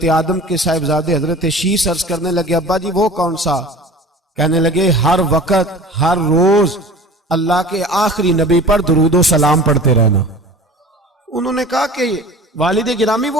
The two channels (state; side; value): normal; both; correlation 0.41